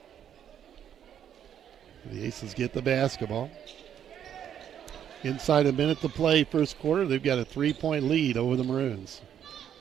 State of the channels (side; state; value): left; quieter; 9.4 dB